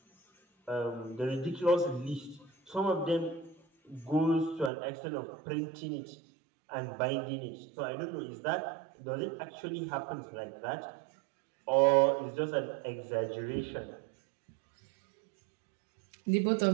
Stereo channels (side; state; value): left; drops out; at 4.7 s